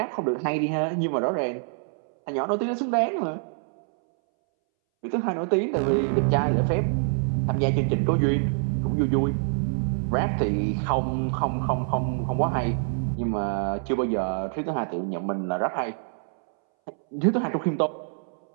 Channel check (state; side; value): silent; left; 61 dB below the other